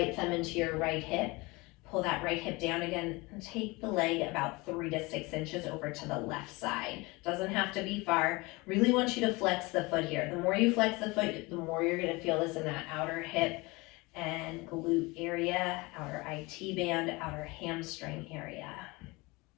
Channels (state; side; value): quieter; right; 24.2 dB